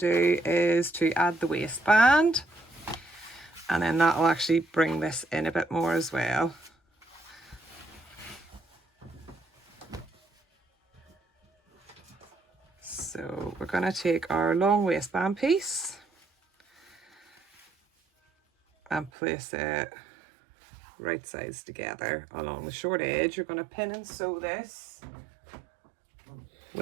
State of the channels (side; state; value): left; drops out; at 19.1 s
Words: is to add the waistband, and then that will actually bring this in a bit more as well. So we're going to take our long waistband piece and place it right sides together along the short edge. You're going to pin and sew this